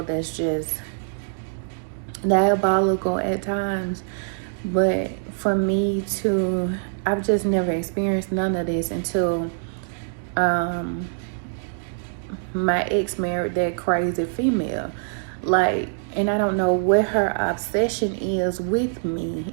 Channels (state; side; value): silent; left; digital silence